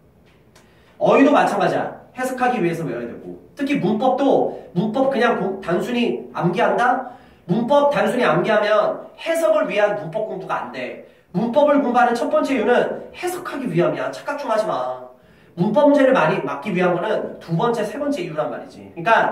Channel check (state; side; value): identical; both; correlation 1.00